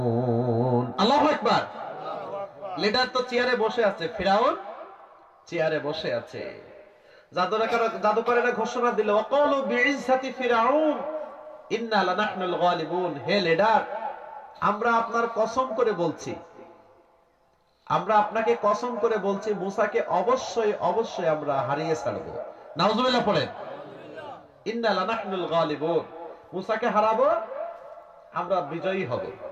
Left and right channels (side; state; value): both; identical; correlation 1.00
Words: আল্লাহু আকবার। লিডার তো চেয়ারে বসে আছে, ফিরাউন চেয়ারে বসে আছে। জাদুকরেরা ঘোষণা দিল, ওয়াকালু বিইজ্জাতি ফিরাউন ইন্না লানাহনুল গালিবুন। হে লিডার, আমরা আপনার কসম করে বলছি, আমরা আপনাকে কসম করে বলছি, মুসাকে অবশ্যই অবশ্যই আমরা হারিয়ে ছাড়বো। নাউজুবিল্লাহ পড়েন। ইন্না লানাহনুল গালিবুন, মুসাকে হারাবো, আমরা বিজয়ী হব।